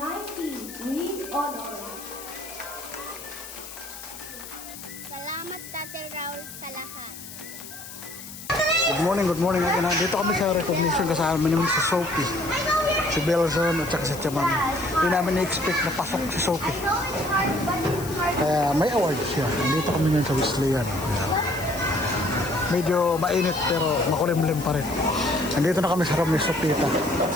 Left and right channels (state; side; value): noise; left; hiss, 13 dB below the sound